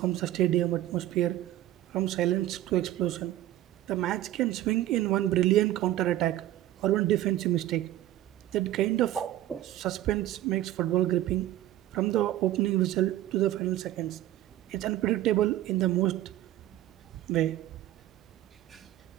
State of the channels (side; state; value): left; quieter; 14.0 dB